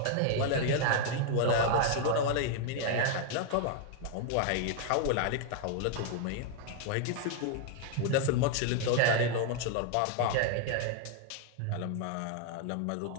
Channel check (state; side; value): different; both; correlation 0.00